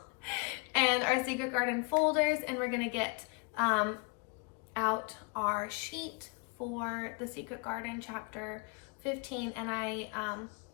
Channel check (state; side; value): quieter; right; 32.8 dB